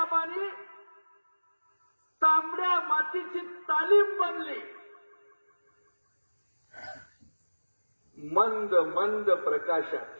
तांबड्या मातीची तालीम बनली. मंद मंद प्रकाशात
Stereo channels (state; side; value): inverted; both; correlation -1.00